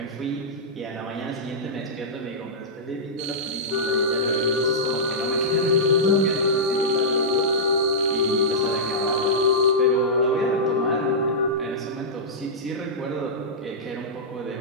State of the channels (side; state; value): both; normal; correlation -0.13